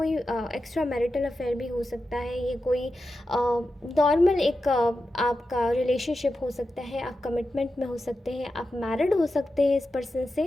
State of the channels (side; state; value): both; normal; correlation 0.90